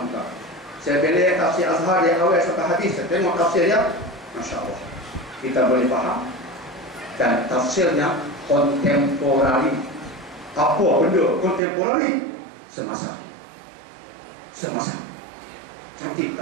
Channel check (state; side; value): drops out; left; at 11.6 s